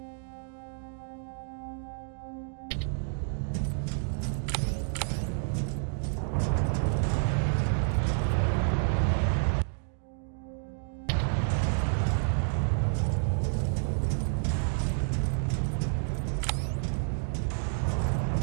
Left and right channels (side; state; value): left; silent; digital silence